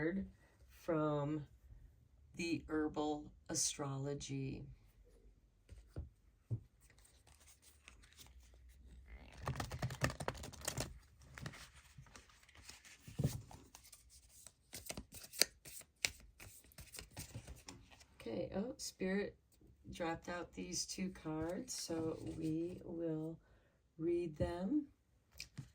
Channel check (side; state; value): both; identical; correlation 1.00